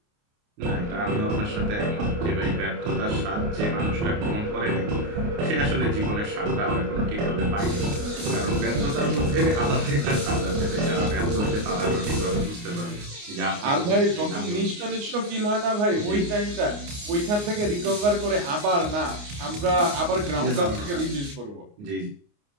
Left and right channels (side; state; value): left; late; 29 ms